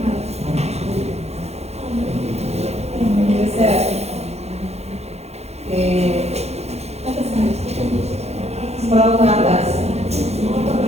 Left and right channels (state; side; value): late; left; 0.31 ms